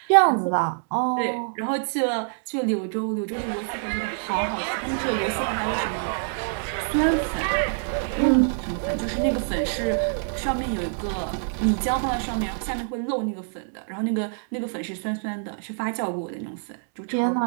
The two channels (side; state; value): left; silent; digital silence